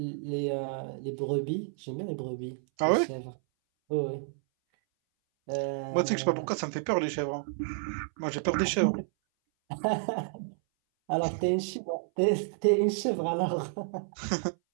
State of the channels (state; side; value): silent; left; 58 dB below the other